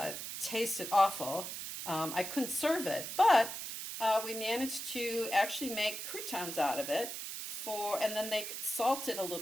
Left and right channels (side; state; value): right; noise; hiss, 6 dB below the sound